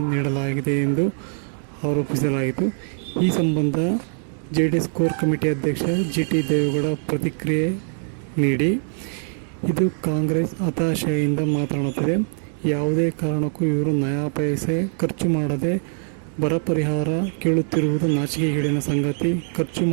ನೀಡಲಾಗಿದೆ ಎಂದು ಆರೋಪಿಸಲಾಯಿತು. ಈ ಸಂಬಂಧ ಜೆಡಿಎಸ್ ಕೋರ್ ಕಮಿಟಿ ಅಧ್ಯಕ್ಷ ಜಿಟಿ ದೇವೇಗೌಡ ಪ್ರತಿಕ್ರಿಯೆ ನೀಡಿ, ಇದು ಕಾಂಗ್ರೆಸ್ ಹತಾಶೆಯಿಂದ ಮಾತನಾಡುತ್ತಿದೆ. ಯಾವುದೇ ಕಾರಣಕ್ಕೂ ಇವರು ನಯಾ ಪೈಸೆ ಖರ್ಚು ಮಾಡದೆ ಬರ ಪರಿಹಾರ ಕೇಳುತ್ತಿರುವುದು ನಾಚಿಕೆಗೇಡಿನ ಸಂಗತಿ. ಖರ್ಚು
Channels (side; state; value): left; silent; 64 dB below the other